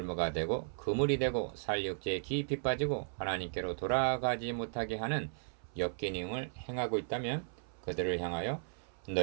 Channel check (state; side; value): silent; left; 54 dB below the other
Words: 되고 그물이 되고 살육죄에 깊이 빠지고 하나님께로 돌아가지 못하게 하는 역기능을 행하고 있다면 그들을 향하여